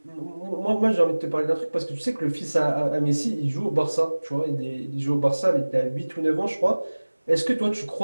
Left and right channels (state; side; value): inverted; both; correlation -1.00